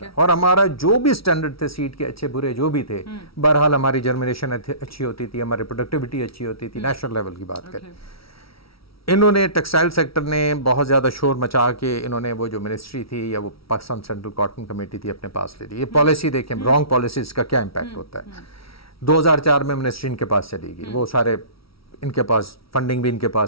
اور ہمارا جو بھی سٹینڈرڈ تھے سیڈ کے اچھے برے جو بھی تھے, بہرحال ہماری جرمینیشن اچھی ہوتی تھی, ہماری پروڈکٹیوٹی اچھی ہوتی تھی. نیشنل لیول کی بات کریں, انہوں نے ٹیکسٹائل سیکٹر نے بہت زیادہ شور مچا کے انہوں نے وہ جو منسٹری تھی یا وہ پاکستان سینٹرل کاٹن کمیٹی تھی اپنے پاس لے لی. یہ پالیسی دیکھیں رانگ پالیسیز کا کیا امپیکٹ ہوتا ہے. 2004 میں منسٹری ان کے پاس چلی گئی, وہ سارے ان کے پاس فنڈنگ بھی ان کے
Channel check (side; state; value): right; late; 0.75 ms